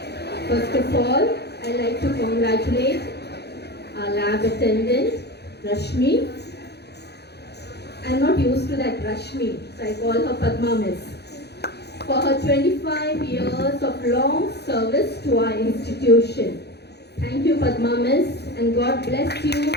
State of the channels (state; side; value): late; right; 0.48 ms